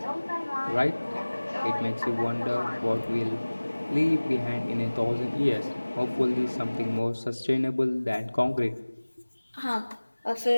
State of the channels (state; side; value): inverted; both; correlation -1.00